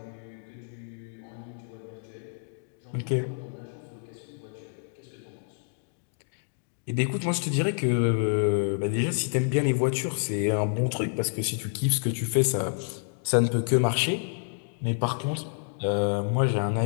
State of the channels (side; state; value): right; silent; digital silence